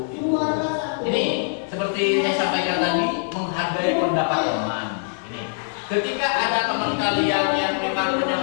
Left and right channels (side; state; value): right; silent; digital silence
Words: Ini seperti saya sampaikan tadi, menghargai pendapat teman. Ketika ada teman kalian yang memang